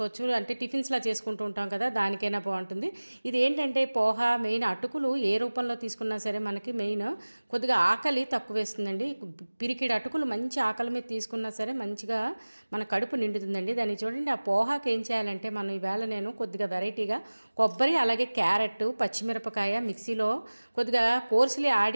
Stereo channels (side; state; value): both; inverted; correlation -1.00